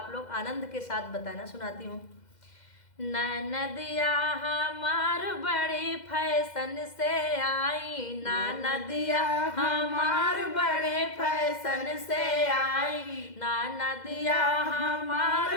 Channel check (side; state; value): right; late; 2.0 ms